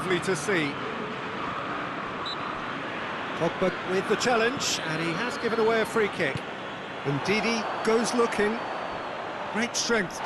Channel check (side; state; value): both; identical; correlation 1.00